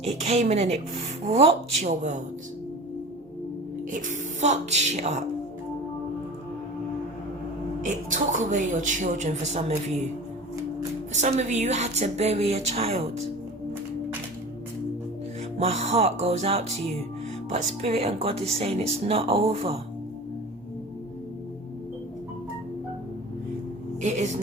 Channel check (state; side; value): normal; both; correlation 0.36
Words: It came in and it rocked your world. It fucked shit up. It took away your children for some of you. For some of you, you had to bury a child. My heart goes out to you, but Spirit and God is saying it's not over. It is